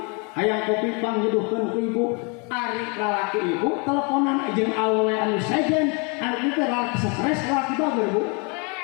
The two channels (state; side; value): quieter; right; 33.7 dB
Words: hayang kopi pangjuduhkeun ku ibu. Ari lalaki ibu teleponan jeung awewe anu sejen, anu teh lalaki stres, lalaki bager Bu.